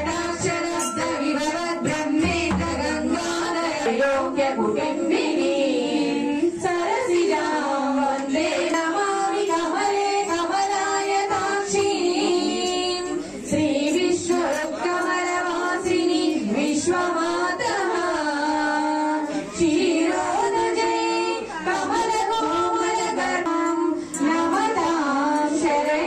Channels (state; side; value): identical; both; correlation 1.00